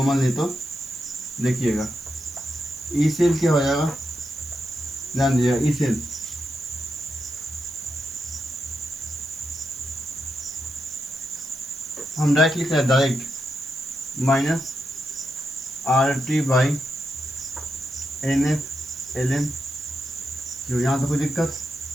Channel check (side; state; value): right; noise; hiss, 19 dB below the sound